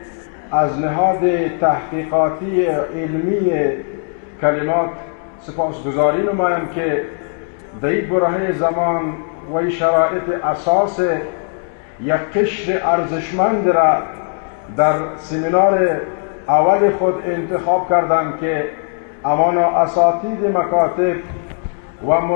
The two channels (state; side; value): silent; right; 62 dB below the other